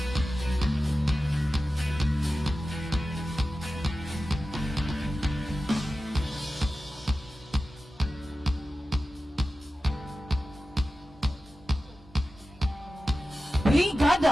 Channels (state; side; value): normal; both; correlation 0.94